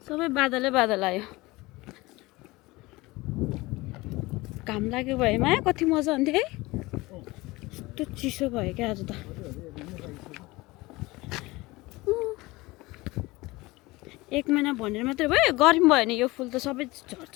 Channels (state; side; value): quieter; right; 21.3 dB